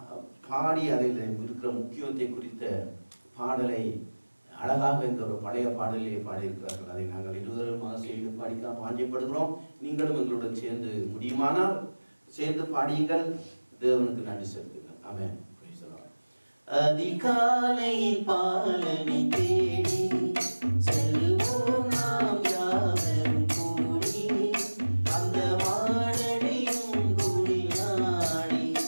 பாடி அதில் இருக்கிற முக்கியத்தை குறித்த பாடலை அழகாக இந்த ஒரு பழைய பாடலிலே பாடியிருக்கிறார்கள். அதை நாங்கள் இருவருமாக சேர்ந்து பாடிக்க பாஞ்சப்படுகிறோம். நீங்களும் எங்களுடன் சேர்ந்து முடியுமானால் சேர்ந்து பாடியுங்கள். தேவனுக்கு நன்றி செலுத்துங்கள். ஆமென். அதிகாலையில் பாலனை தேடி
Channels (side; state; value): both; inverted; correlation -1.00